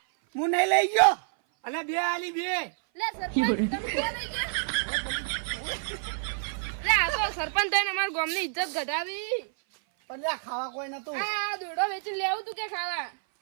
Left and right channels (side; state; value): left; silent; 56 dB below the other